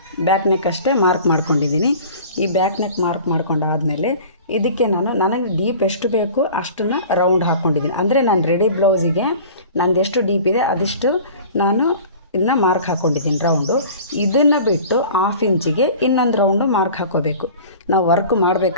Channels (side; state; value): both; inverted; correlation -0.42